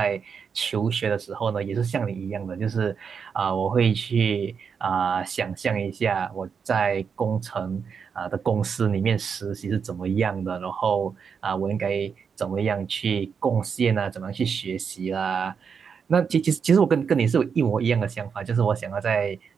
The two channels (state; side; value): quieter; left; 6.4 dB